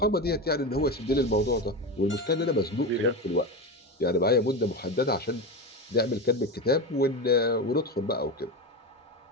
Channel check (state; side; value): normal; both; correlation 0.20